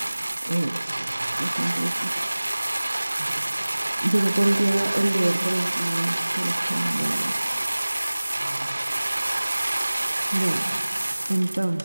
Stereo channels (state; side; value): inverted; both; correlation -1.00